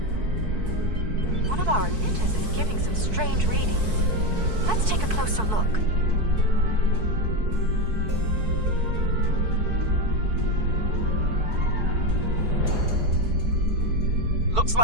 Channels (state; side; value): late; left; 4.6 ms